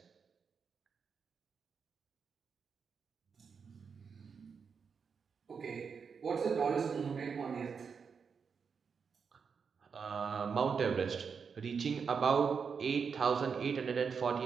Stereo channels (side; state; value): left; quieter; 6.0 dB